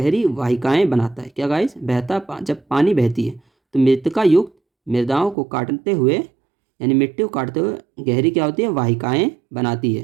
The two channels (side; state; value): left; drops out; at 5.4 s